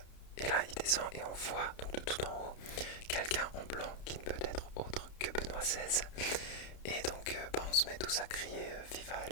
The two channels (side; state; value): right; late; 31 ms